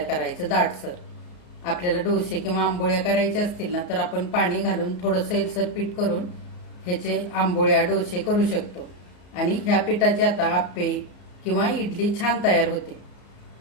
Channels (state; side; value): late; right; 34 ms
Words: करायचं दाटसर. आपल्याला डोसे किंवा आंबोळ्या करायच्या असतील ना, तर आपण पाणी घालून थोडं सैलसर पीठ करून ह्याचे आंबोळ्या डोसे करू शकतो. आणि ह्या पिठाचे आता आप्पे किंवा इडली छान तयार होते.